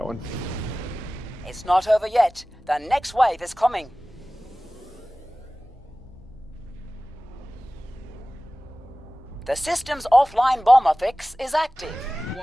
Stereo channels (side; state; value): both; normal; correlation 0.97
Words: one. It's not over yet. The next wave is coming. The system's offline bomber fix is active.